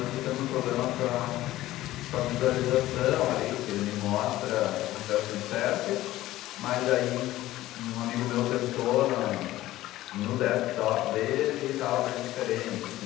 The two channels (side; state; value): right; quieter; 15.7 dB